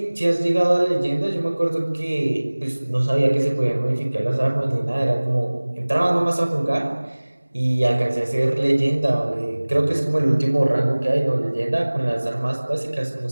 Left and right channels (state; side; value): inverted; both; correlation -1.00